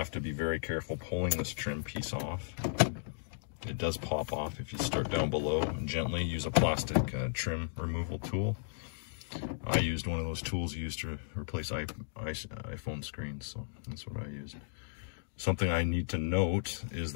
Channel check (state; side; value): silent; right; digital silence